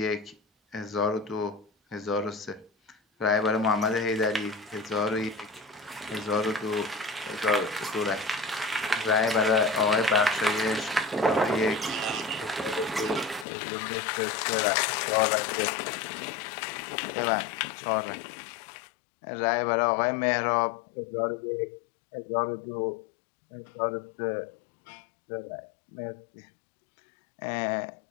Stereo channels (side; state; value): right; drops out; at 13.5 s